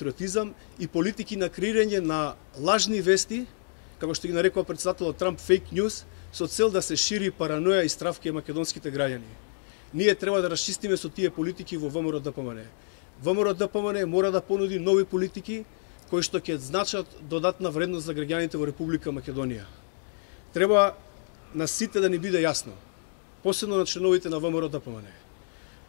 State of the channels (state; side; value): silent; right; digital silence